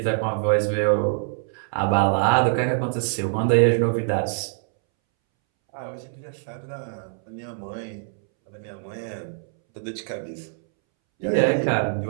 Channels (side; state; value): left; silent; 62 dB below the other